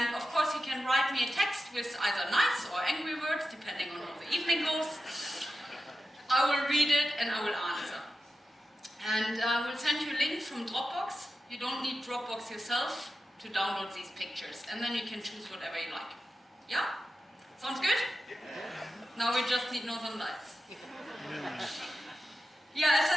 of course you can write me a text with either nice or angry words, depending on how the evening goes. I will read it and I will answer. And I will send you a link from Dropbox. You don't need Dropbox yourself to download these pictures. And then you can choose whatever you like. Yeah? Sounds good? Now we just need Northern Lights. Yeah, as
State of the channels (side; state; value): both; normal; correlation 0.91